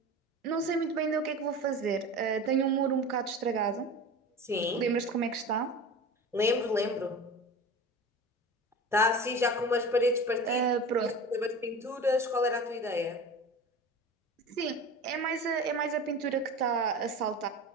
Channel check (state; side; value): normal; both; correlation 0.33